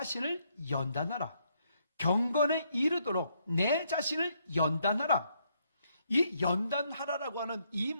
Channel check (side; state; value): both; inverted; correlation -0.74